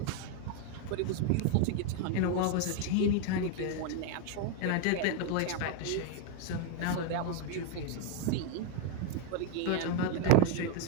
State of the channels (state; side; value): different; both; correlation 0.00